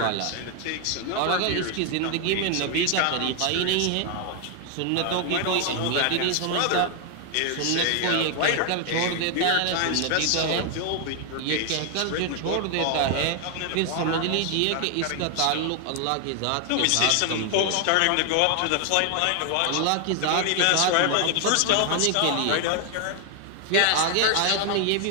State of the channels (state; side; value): different; both; correlation 0.00